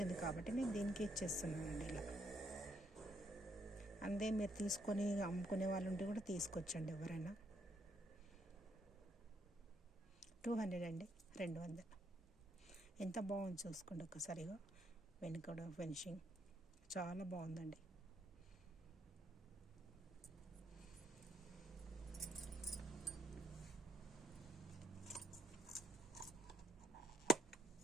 కాబట్టి నేను దీనికి ఇచ్చేస్తున్నానండి ఇలా. అందే మీరు తీసుకొని అమ్ముకునే వాళ్ళు ఉంటే కూడా తీసుకొచ్చండి ఎవరైనా. 200 అండి, 200. ఎంత బాగుంది చూసుకోండి ఒక్కసారిగా. వెనుక ఫినిషింగ్ చాలా బాగుందండి.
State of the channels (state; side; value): normal; both; correlation 0.71